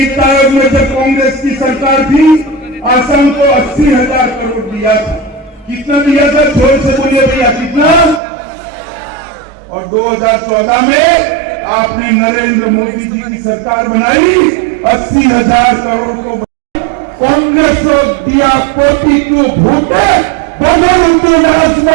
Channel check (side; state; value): left; drops out; at 8.2 s